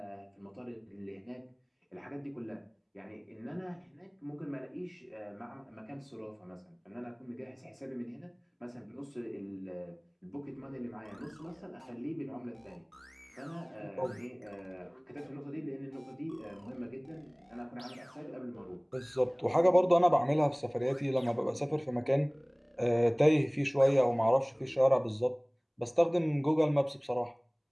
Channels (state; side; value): identical; both; correlation 1.00